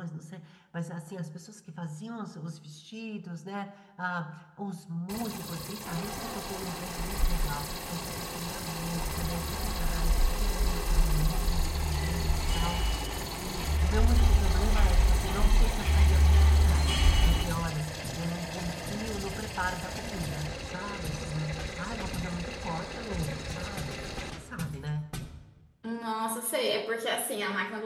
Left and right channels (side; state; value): both; identical; correlation 1.00